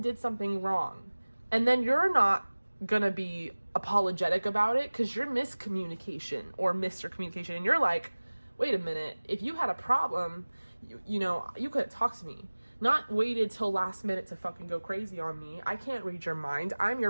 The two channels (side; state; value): both; inverted; correlation -1.00